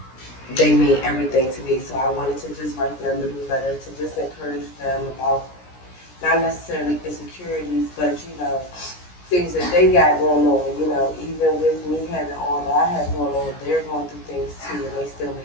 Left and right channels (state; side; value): late; right; 17 ms